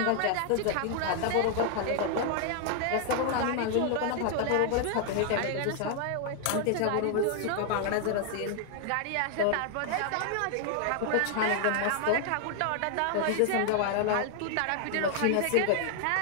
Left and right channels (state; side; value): different; both; correlation 0.00